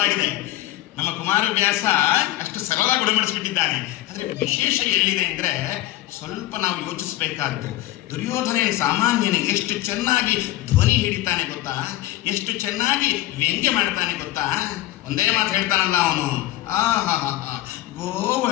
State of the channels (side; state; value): right; quieter; 15.6 dB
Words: ನಮ್ಮ ಕುಮಾರವ್ಯಾಸ ಅಷ್ಟು ಸರಳವಾಗಿ ಗುಣಮಡಿಸ್ಬಿಟ್ಟಿದ್ದಾನೆ. ಆದರೆ ವಿಶೇಷ ಎಲ್ಲಿದೆ ಅಂದರೆ ಸ್ವಲ್ಪ ನಾವು ಯೋಚಿಸಬೇಕಾದ್ದು. ದುರ್ಯೋಧನ ಸಾಮಾನ್ಯನೇ ಎಷ್ಟು ಚೆನ್ನಾಗಿ ಧ್ವನಿ ಹಿಡಿತಾನೆ ಗೊತ್ತಾ, ಎಷ್ಟು ಚೆನ್ನಾಗಿ ವ್ಯಂಗ್ಯ ಮಾಡ್ತಾನೆ ಗೊತ್ತಾ. ಒಂದೇ ಮಾತು ಹೇಳ್ತಾನಲ್ಲ ಅವನು, ಆಹಾ